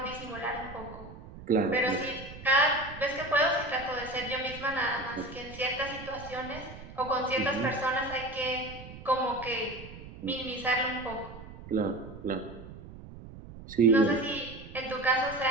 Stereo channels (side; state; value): right; noise; rumble, 15 dB below the sound